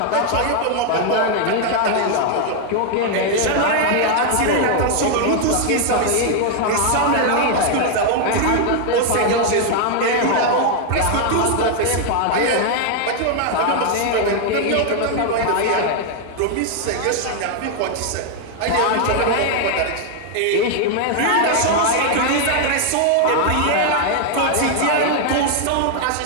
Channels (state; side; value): different; both; correlation 0.00